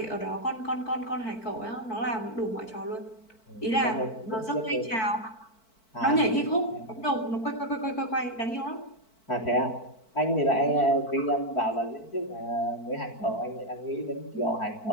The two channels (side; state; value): right; late; 4.5 ms